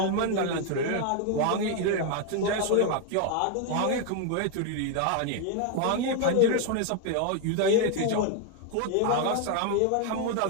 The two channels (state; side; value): different; both; correlation 0.00